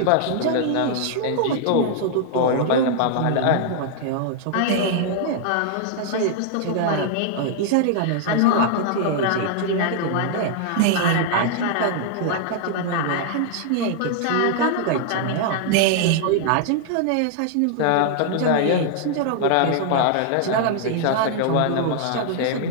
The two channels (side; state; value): both; different; correlation -0.01